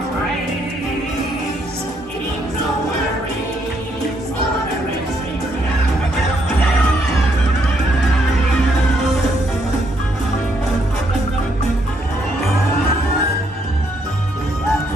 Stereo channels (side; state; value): both; normal; correlation 0.73